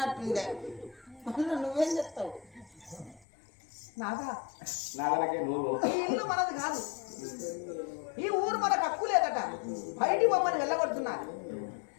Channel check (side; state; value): right; drops out; at 3.2 s